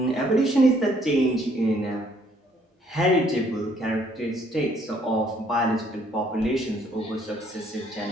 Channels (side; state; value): both; normal; correlation 0.65